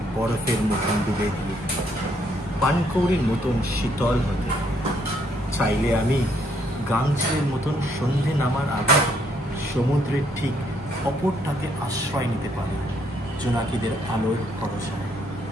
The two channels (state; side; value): normal; both; correlation 0.70